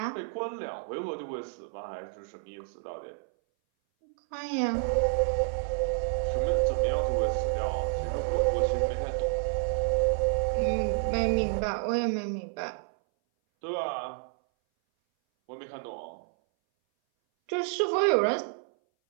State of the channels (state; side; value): silent; left; 58 dB below the other